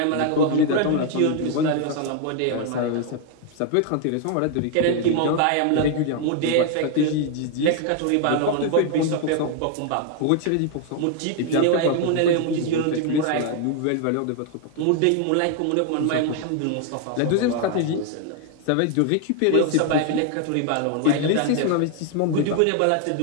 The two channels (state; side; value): different; both; correlation 0.00